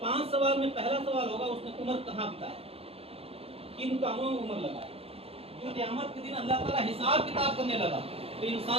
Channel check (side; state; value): left; late; 0.28 ms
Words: سوال میں پہلا سوال ہوگا اس نے عمر کہاں بتایا, کن کاموں میں عمر لگایا. جو قیامت کے دن اللہ تعالیٰ حساب کتاب کرنے لگا تو